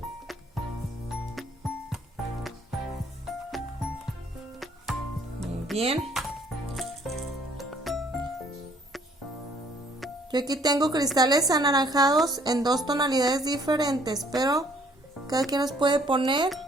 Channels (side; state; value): both; normal; correlation 0.61